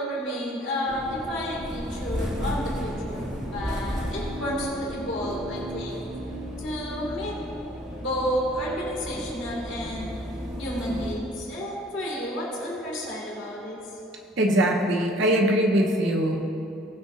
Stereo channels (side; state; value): both; normal; correlation 0.56